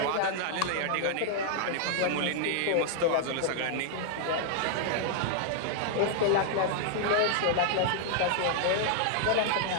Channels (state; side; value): different; both; correlation -0.01